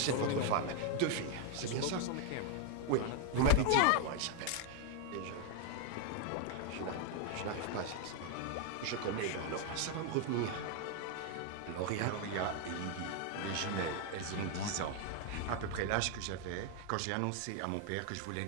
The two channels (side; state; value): both; different; correlation 0.00